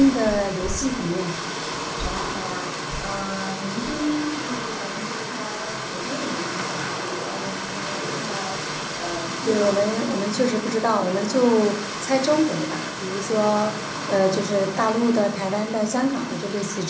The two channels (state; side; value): identical; both; correlation 1.00